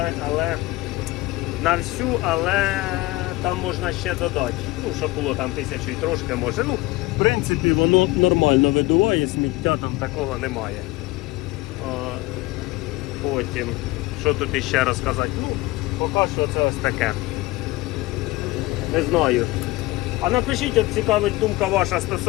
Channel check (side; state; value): right; quieter; 20.4 dB